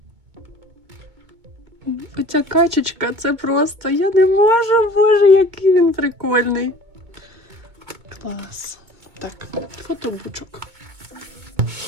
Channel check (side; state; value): left; late; 2.2 ms